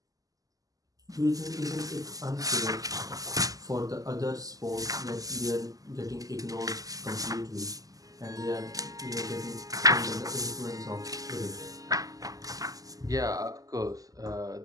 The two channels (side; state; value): left; late; 0.17 ms